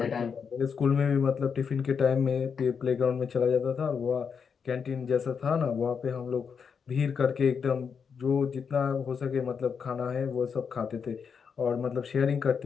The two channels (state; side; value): quieter; right; 6.4 dB